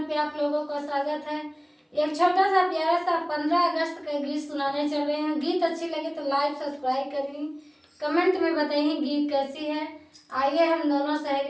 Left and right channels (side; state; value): both; identical; correlation 1.00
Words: पे आप लोगों का स्वागत है। एक छोटा सा प्यारा सा 15 अगस्त का गीत सुनाने चल रहे हैं। गीत अच्छी लगे तो लाइक सब्सक्राइब करिए, कमेंट में बताइए गीत कैसी है। आइए हम दोनों